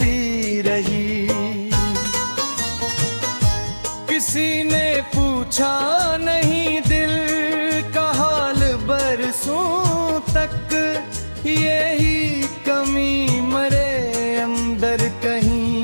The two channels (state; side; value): inverted; both; correlation -1.00